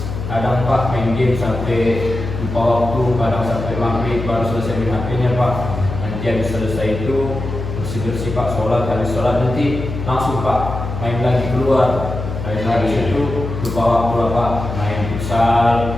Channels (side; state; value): left; noise; hum, 6 dB below the sound